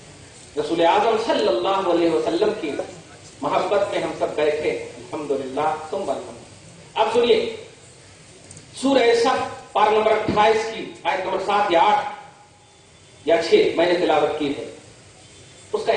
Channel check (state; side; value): identical; both; correlation 1.00